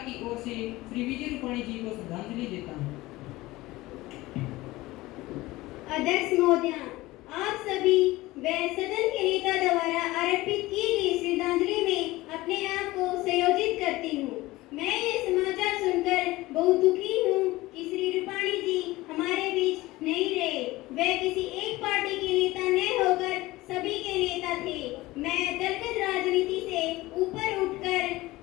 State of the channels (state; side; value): quieter; right; 19.0 dB